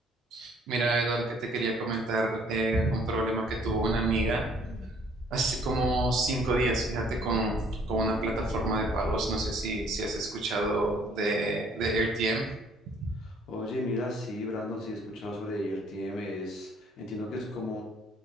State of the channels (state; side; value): normal; both; correlation 0.61